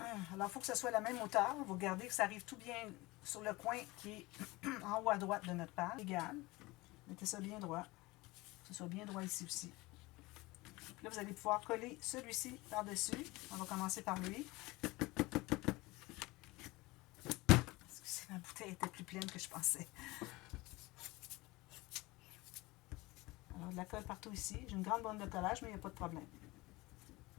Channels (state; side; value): quieter; right; 21.7 dB